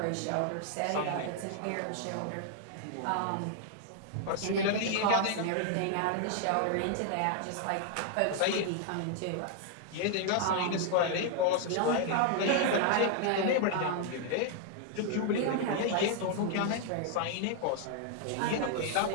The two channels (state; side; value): different; both; correlation 0.00